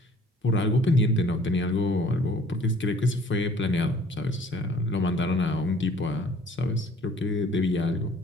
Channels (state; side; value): normal; both; correlation 0.54